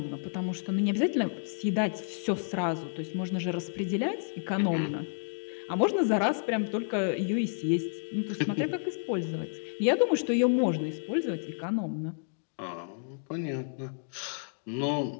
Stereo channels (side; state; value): right; silent; digital silence